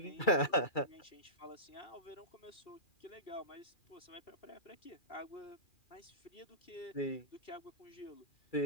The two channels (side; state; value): right; late; 2.3 ms